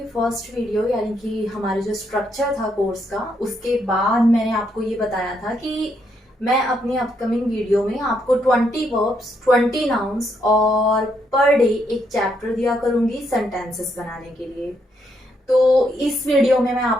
first video यानी कि हमारे जो स्ट्रक्चर था कोर्स का, उसके बाद मैंने आपको ये बताया था कि मैं अपनी अपकमिंग वीडियो में आपको 20 वर्ब्स, 20 नाउन्स और पर डे एक चैप्टर दिया करूंगी सेंटेंसेस बनाने के लिए। तो इस वीडियो में मैं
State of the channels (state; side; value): normal; both; correlation 0.76